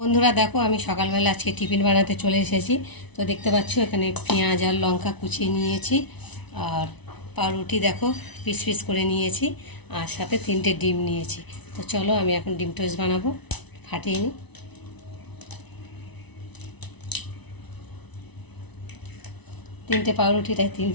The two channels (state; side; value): late; right; 1.0 ms